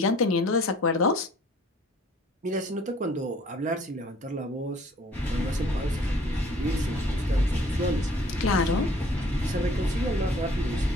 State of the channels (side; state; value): both; normal; correlation 0.55